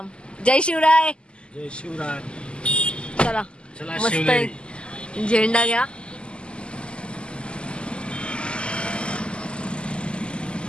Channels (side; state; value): right; late; 0.051 ms